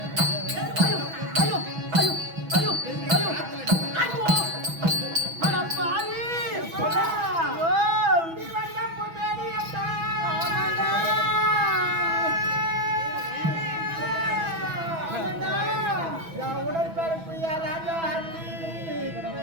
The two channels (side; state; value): left; late; 6.1 ms